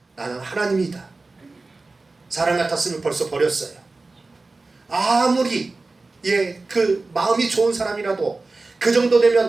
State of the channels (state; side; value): quieter; left; 3.5 dB